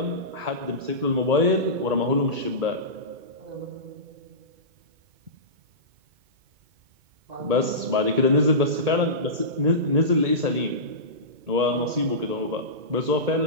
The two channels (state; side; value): late; left; 2.2 ms